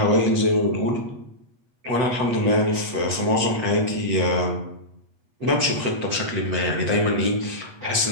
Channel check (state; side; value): late; left; 8.3 ms